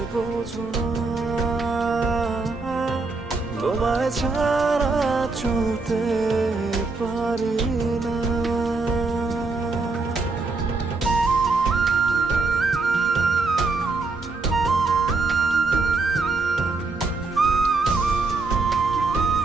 বোঝো না তোমায় ছাড়া চলতে পারি না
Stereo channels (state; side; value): quieter; left; 3.8 dB